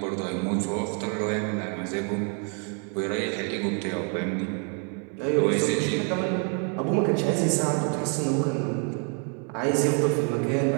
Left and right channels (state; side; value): quieter; left; 39.7 dB